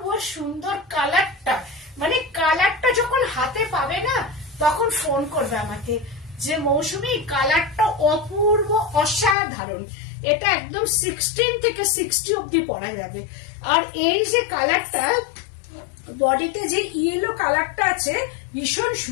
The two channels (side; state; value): right; drops out; at 9.3 s